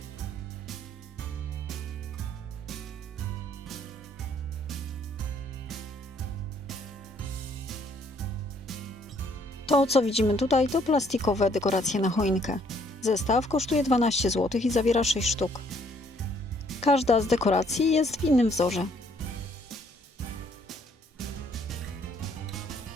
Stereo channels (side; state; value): both; normal; correlation 0.65